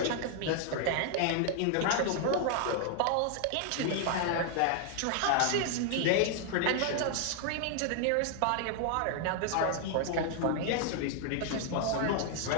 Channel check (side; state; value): both; different; correlation 0.00